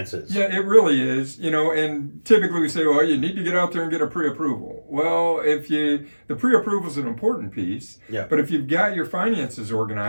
Yeah, it really is. And typically we say, well, you need to get out there and get a pre-approval. Well, the pre-approval is an important piece. Yeah. But if you've got your finances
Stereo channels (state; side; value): inverted; both; correlation -1.00